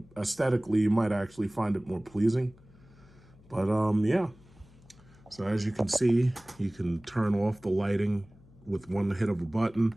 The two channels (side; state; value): left; noise; hum, 26 dB below the sound